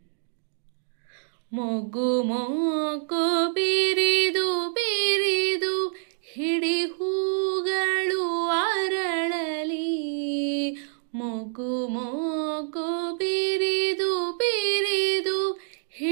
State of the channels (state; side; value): silent; left; digital silence